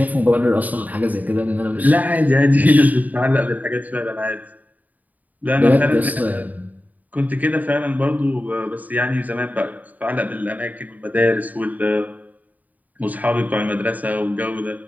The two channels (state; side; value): late; left; 0.078 ms